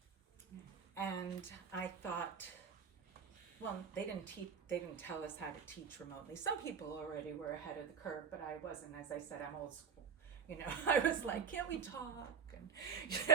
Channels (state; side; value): quieter; left; 6.8 dB